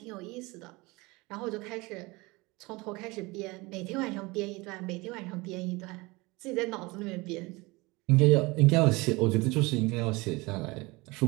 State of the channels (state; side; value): quieter; left; 23.8 dB